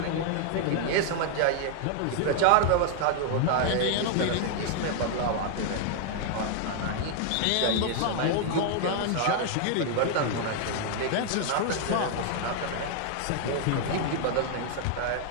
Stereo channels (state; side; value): different; both; correlation 0.00